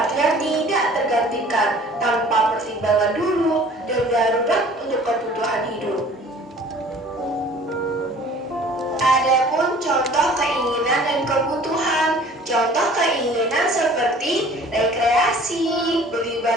tidak tergantikan, tanpa pertimbangan dulu dan darurat untuk kebutuhan hidup. Adapun contoh keinginan dan kebutuhan. Contoh keinginan seperti rekreasi, beli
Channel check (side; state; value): both; normal; correlation 0.49